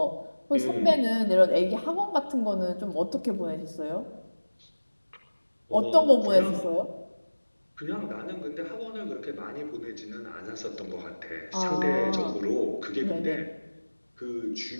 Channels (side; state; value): both; inverted; correlation -1.00